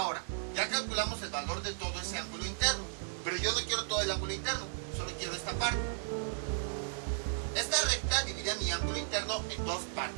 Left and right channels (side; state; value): left; silent; digital silence